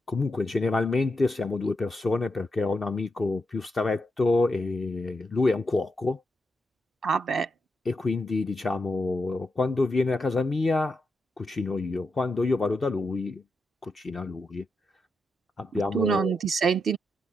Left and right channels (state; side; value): normal; both; correlation 0.85